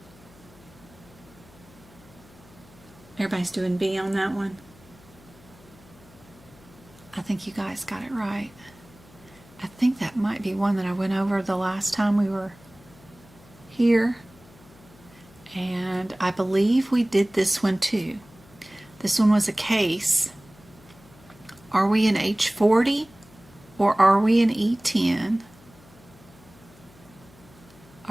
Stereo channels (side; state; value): left; noise; hum, 25 dB below the sound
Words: Everybody's doing B on that one. I think you guys got it right. I think that might be one that I went over the last time we were here. And and I believe we did this one too. This one was a case. Are we in H40 or are we in E10?